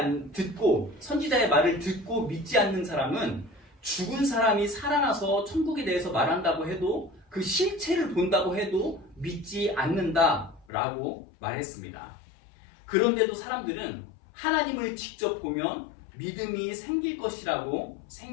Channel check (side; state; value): right; drops out; at 10.7 s